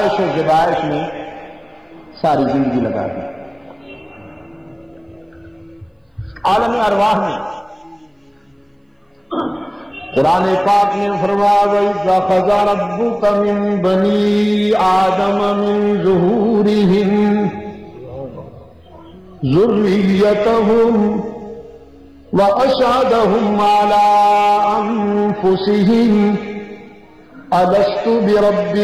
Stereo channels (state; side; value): identical; both; correlation 1.00